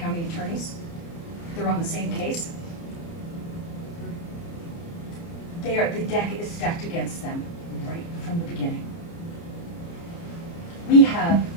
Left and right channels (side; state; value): right; late; 30 ms